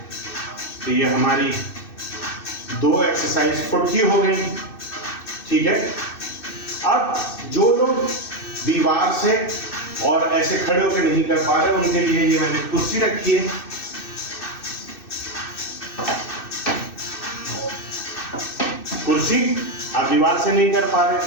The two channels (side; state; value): right; late; 2.6 ms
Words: तो ये हमारी 2 एक्सरसाइज फुट की हो गई, ठीक है। अब जो लोग दीवार से और ऐसे खड़े होकर नहीं कर पा रहे, उनके लिए ये मैंने कुर्सी रखी है। कुर्सी आप दीवार से नहीं कर पा रहे,